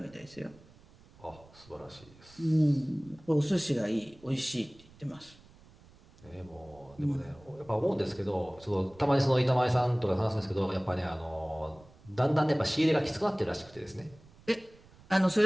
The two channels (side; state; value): right; noise; rumble, 25 dB below the sound